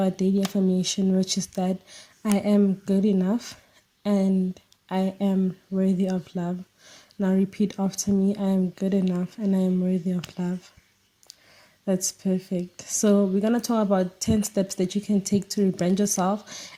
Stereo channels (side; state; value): both; identical; correlation 1.00